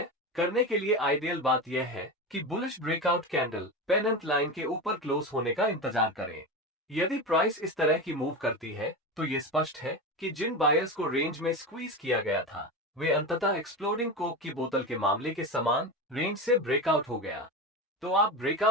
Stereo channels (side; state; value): both; normal; correlation 0.22